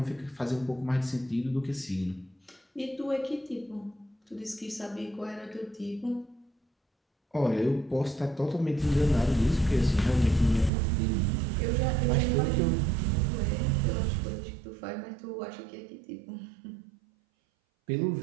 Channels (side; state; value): left; drops out; at 10.7 s